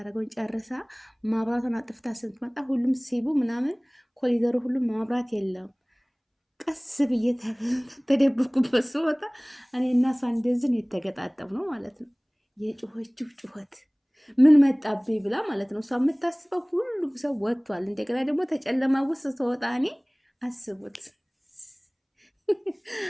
ጨርሳ ማብራቷን አጥፍታ ስትመጣ ሁሉም ሲቡ ምናምን ኮሊደሩ ሁሉም ማብራት የለም። ቀስ ብዬ ተደብኩበት ስወጣ እኔ እና እሷ እንደዚህ ነው የተገጣጠምነው ማለት ነው። የጩኸችው ጩኸት ምን መጣብኝ ብላ ማለት ነው። እሷ የምታስበው ሁሉ ሁሉም ሰው ወጥቷል። እንደገና ደግሞ ተጨለማ ውስጥ ተወጣ እኔ አስቡት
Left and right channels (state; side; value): identical; both; correlation 1.00